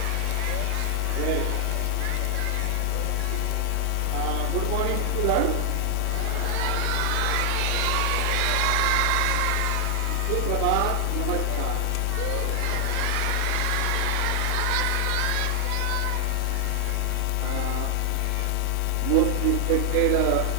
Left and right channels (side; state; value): both; different; correlation 0.00